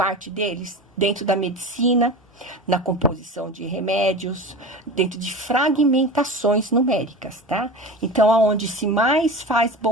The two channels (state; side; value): normal; both; correlation 0.31